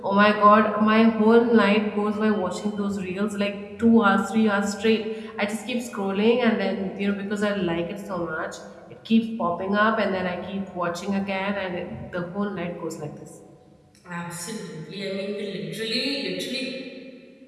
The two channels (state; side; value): identical; both; correlation 1.00